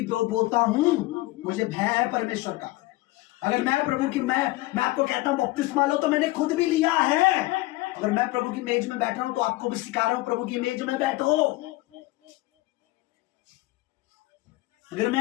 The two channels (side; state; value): right; quieter; 20.1 dB